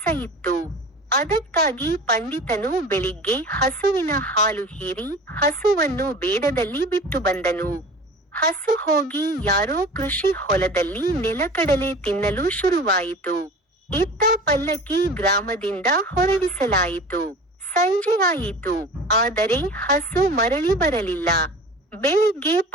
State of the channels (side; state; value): both; normal; correlation 0.39